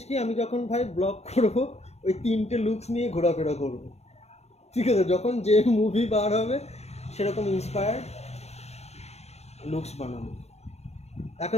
কি আমি যখন ভাই ব্লগ করবো ওই 3টে লুকস নিয়ে ঘোরাফেরা করবো ঠিক আছে যখন যে মুভি বার হবে সেরকম ইন্সপায়ার্ড লুকস বানাবো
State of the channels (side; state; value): right; late; 0.31 ms